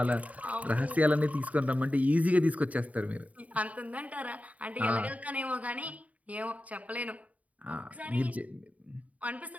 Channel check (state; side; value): late; left; 0.070 ms